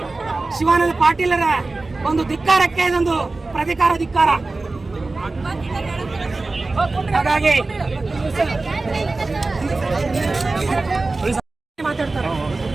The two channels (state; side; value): quieter; left; 3.4 dB